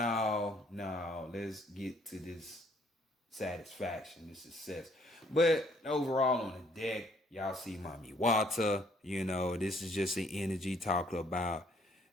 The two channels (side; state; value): both; normal; correlation 0.64